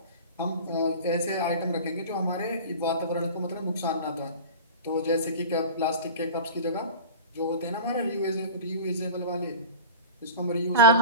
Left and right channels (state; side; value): inverted; both; correlation -0.34